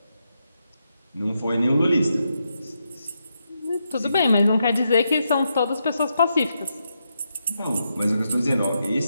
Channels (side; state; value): both; inverted; correlation -0.83